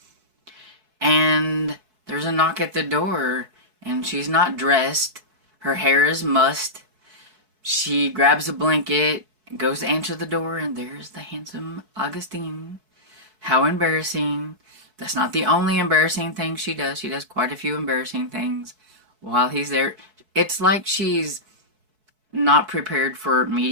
And there's a knock at the door, and she's not dressed. Her hair is mussed. She grabs a blanket, goes to answer the door, and there's the handsome Augustine. How embarrassing. That's not the only embarrassing thing she does. She does quite a few embarrassing things while he's there. It's like she's not prepared for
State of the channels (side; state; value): left; late; 4.6 ms